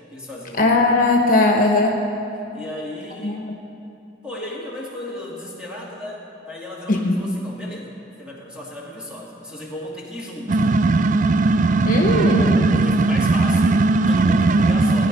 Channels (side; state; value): both; normal; correlation 0.53